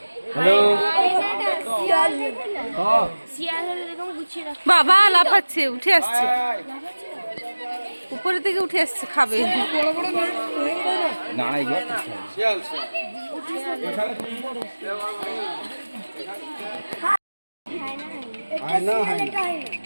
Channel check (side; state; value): both; inverted; correlation -1.00